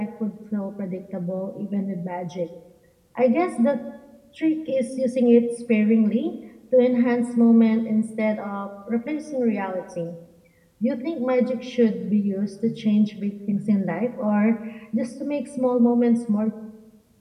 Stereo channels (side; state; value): both; identical; correlation 1.00